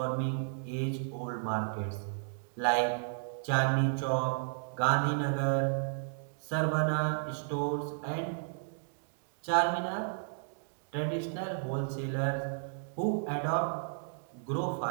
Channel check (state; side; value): silent; left; digital silence